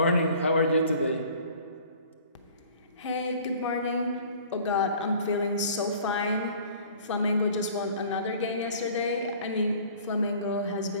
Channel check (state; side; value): inverted; both; correlation -0.49